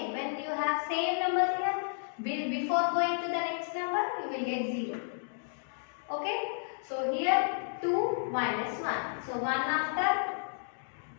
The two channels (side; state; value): right; silent; digital silence